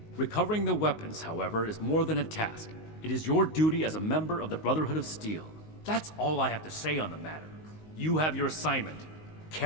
Recovering the weapons, however, is more than a task. It is your duty as a member of the Brotherhood of Steel. That's all I have to say on the matter. You have your assignment.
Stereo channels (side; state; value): right; late; 19 ms